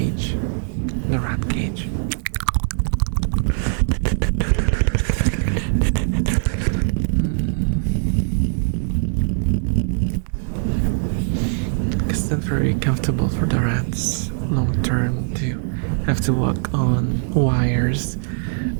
the rat cage. It's not very comfortable for the rats long term to have to walk on wires.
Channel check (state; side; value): silent; left; digital silence